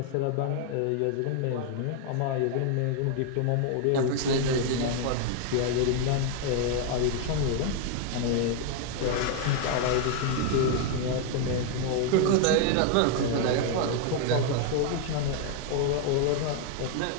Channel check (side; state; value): both; different; correlation 0.00